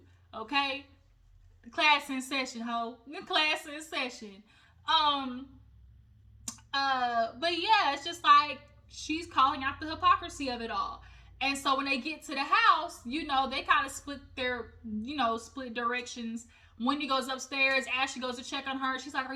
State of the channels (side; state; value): both; identical; correlation 1.00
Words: Okay? Class in session, ho. Class in session. But yeah, it's just like she's calling out the hypocrisy of it all. And so when they get to the house, you know, they kind of split directions. Wendy goes upstairs. Ashley goes to check on her. She's like, are